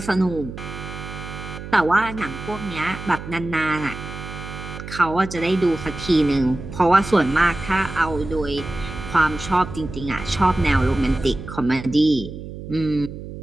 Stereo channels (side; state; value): right; noise; hum, 11 dB below the sound